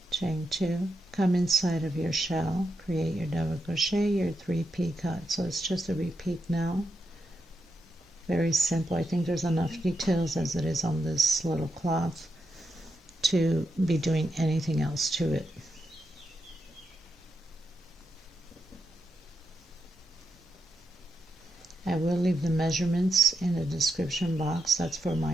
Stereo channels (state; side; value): normal; both; correlation 0.84